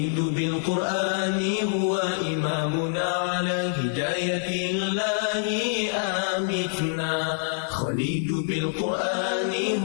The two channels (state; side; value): silent; right; digital silence